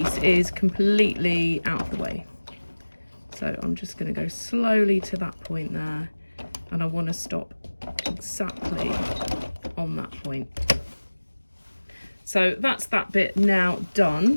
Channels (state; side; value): inverted; both; correlation -1.00